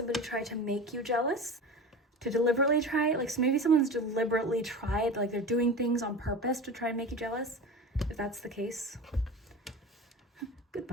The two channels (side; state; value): both; normal; correlation 0.31